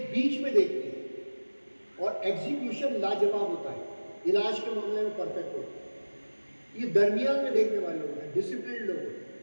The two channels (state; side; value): inverted; both; correlation -1.00